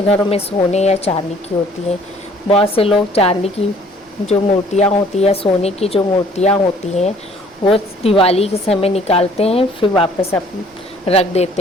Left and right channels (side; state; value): both; normal; correlation 0.57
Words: घरों में सोने या चांदी की होती हैं। बहुत से लोग चांदी की जो मूर्तियाँ होती है, सोने की जो मूर्तियाँ होती हैं, वो दिवाली के समय निकालते हैं, फिर वापस रख